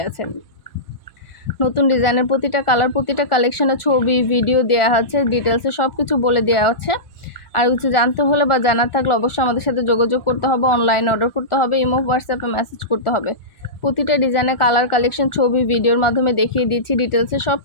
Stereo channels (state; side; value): late; right; 1.4 ms